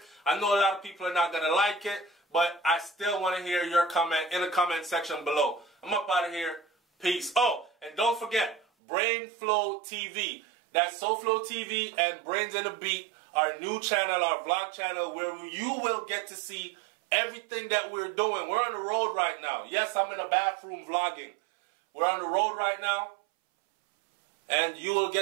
I know a lot of people are not going to like it, but I still want to hear your comment in the comment section below. I'm up out of here. Peace. Oh, and don't forget, BrainFlow TV. That's SouFLoTV and Brains in a Beat our new channel, our vlog channel, where you will get to see everything that we're doing. We're on the road right now. Yes, I'm in a bathroom vlogging. We're on the road right now, and you will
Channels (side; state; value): left; drops out; at 8.7 s